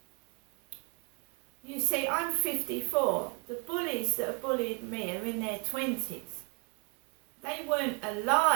You see, I'm 54. The bullies that have bullied me are in their 20s. They weren't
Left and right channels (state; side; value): quieter; left; 34.8 dB